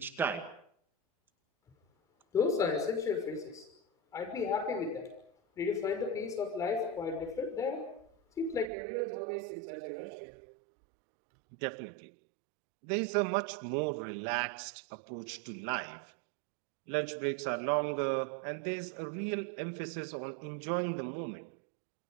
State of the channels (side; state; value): left; drops out; at 8.7 s